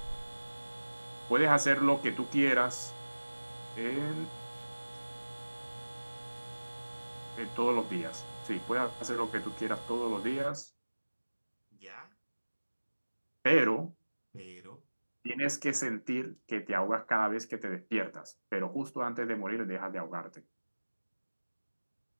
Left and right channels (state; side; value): inverted; both; correlation -1.00